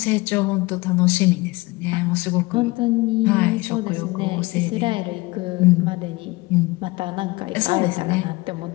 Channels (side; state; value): right; quieter; 22.6 dB